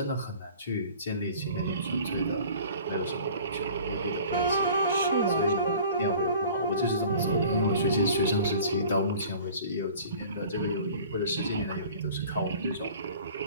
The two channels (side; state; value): both; inverted; correlation -0.46